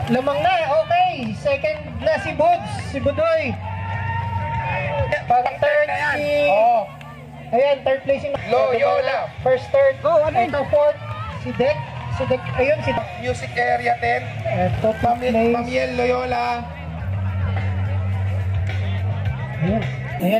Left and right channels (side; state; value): both; identical; correlation 1.00